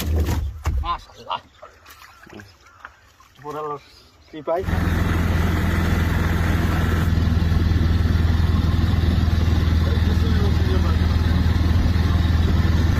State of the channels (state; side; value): identical; both; correlation 1.00